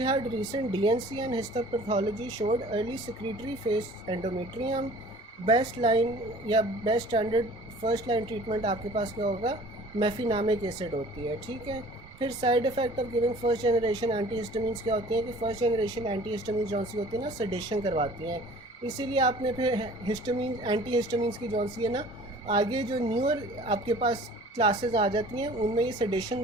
recent DNC and histopathology showed early secretory phase endometrium. Best line या best standard first line treatment आपके पास क्या होगा, मेफिनामिक acid होती है, ठीक है। फिर side effect of giving first generation antihistamines क्या होती हैं कि फर्स्ट जनरेशन एंटीहिस्टामिन्स जौन सी होती है ना सेडेशन करवाती हैं, इसीलिए आपने फिर हिस्टामिन एंटीहिस्टामिन्स की जौन सी है ना आगे जो न्यूअर आपके पास क्लासेस आ जाती हैं उनमें ये सेडेशन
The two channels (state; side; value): normal; both; correlation 0.48